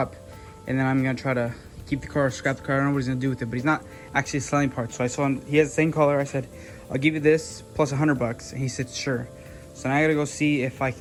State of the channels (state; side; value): identical; both; correlation 1.00